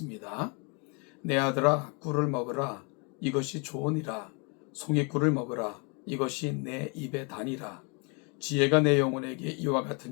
내 아들아, 꿀을 먹으라. 이것이 좋으니라. 송이꿀을 먹으라. 이것이 내 입에 다니라. 지혜가 내 영혼에게 이와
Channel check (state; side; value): quieter; right; 34.0 dB